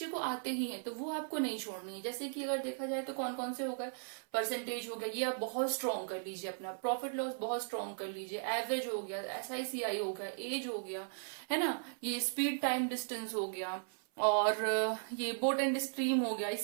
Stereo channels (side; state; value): left; silent; 53 dB below the other